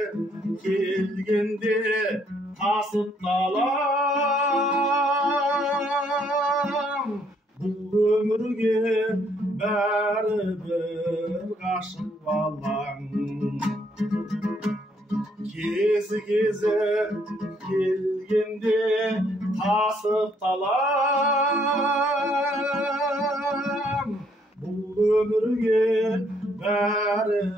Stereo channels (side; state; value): both; normal; correlation 0.69